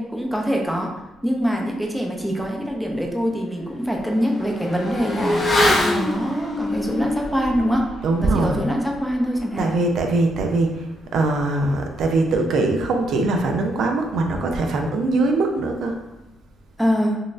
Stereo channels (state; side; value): normal; both; correlation 0.80